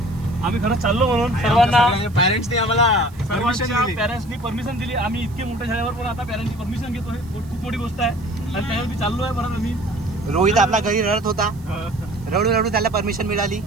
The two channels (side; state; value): right; noise; hiss, 27 dB below the sound